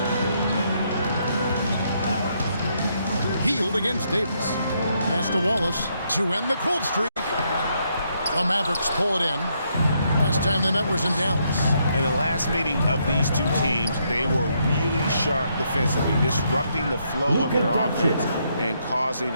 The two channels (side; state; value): both; inverted; correlation -0.75